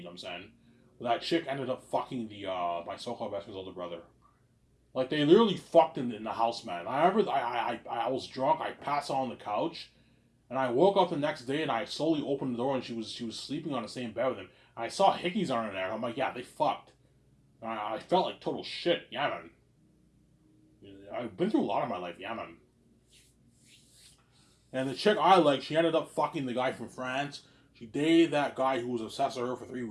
know what I'm saying. But that chick ended up fucking my so-called best friend's older brother. Like they literally fucked in the house, man. I remember I was drunk. I passed out on the couch, and I woke up the next day and I slowly opened the door and she was sleeping on the same bed with him. And I saw hickeys on her there. I'm like, yeah, they fucked. And I felt like total shit. Yeah, man. I've been through a lot in my life. Yeah, man. And the chick I like, she ended up fucking the guy from France. She dated that guy who was obsessed with her for 3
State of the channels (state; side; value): identical; both; correlation 1.00